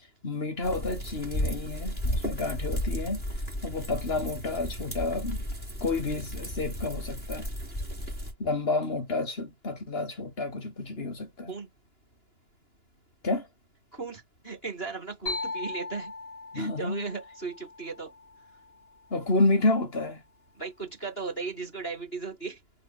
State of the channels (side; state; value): right; late; 2.9 ms